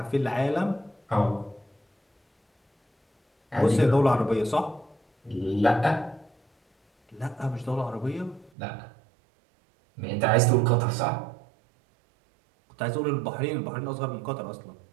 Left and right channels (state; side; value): drops out; left; at 8.5 s